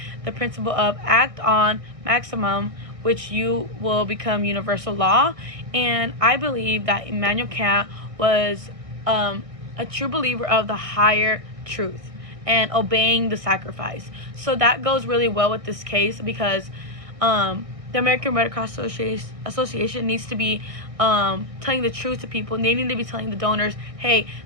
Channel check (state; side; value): late; left; 1.6 ms